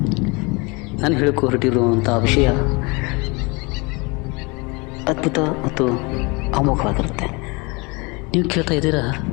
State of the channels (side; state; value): right; quieter; 28.0 dB